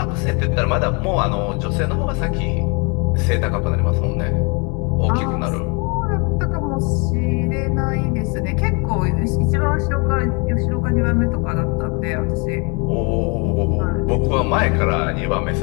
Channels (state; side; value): quieter; right; 32.0 dB